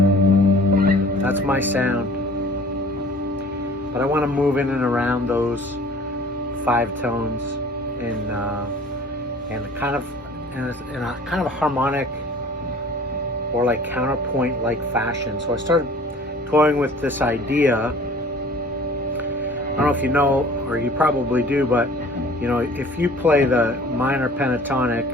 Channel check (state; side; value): normal; both; correlation 0.48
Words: That's my sound. But I want to move in and around those 5 tones in a kind of harmonic or like counterpoint like fashion. So I started toying with this idea. I don't know if you know, or you probably do, but you know, if you play the minor pentatonic,